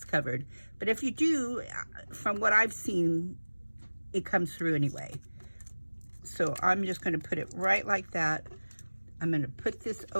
covered, but if you do, from what I've seen, it comes through anyway. So I'm just going to put it right like that. I'm going to put this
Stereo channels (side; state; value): both; inverted; correlation -1.00